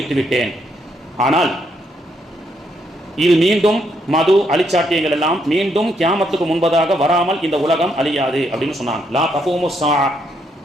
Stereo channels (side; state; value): both; normal; correlation 0.75